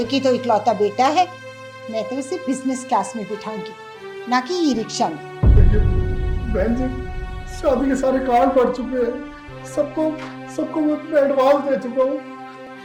ही तो इकलौता बेटा है। मैं तो उसे बिजनेस क्लास में बिठाऊंगी, ना कि ई रिक्शा में। देखिए बहन जी, शादी के सारे कार्ड पड़ चुके हैं। सबको सबको मैं एडवांस दे चुका हूँ।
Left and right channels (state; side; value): identical; both; correlation 1.00